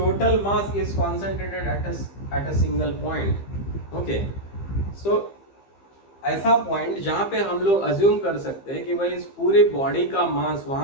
mass is concentrated at a single point. Okay, so ऐसा पॉइंट जहां पे हम लोग अज्यूम कर सकते हैं कि भाई इस पूरी बॉडी का मास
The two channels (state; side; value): late; right; 15 ms